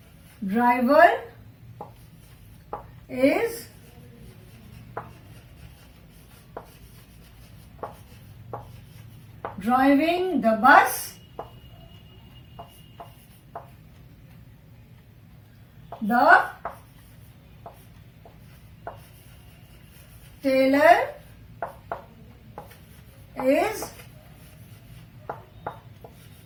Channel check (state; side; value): identical; both; correlation 1.00